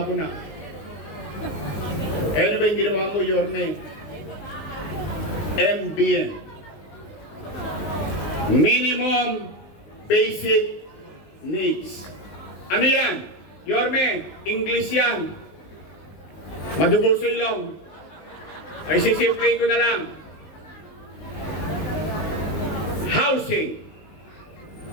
ko na. Ano ba yung ginawa mo, Yorme? MBN. Minimum Basic Needs. Ano yan? Yorme, English yan. Madugo sa ilong. Ay, sisimplin ko na lang. Housing,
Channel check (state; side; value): late; right; 19 ms